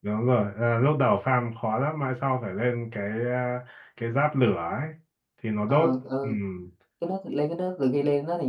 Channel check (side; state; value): both; identical; correlation 1.00